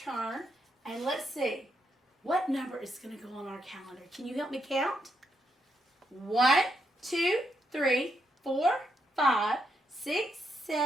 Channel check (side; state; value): both; normal; correlation 0.80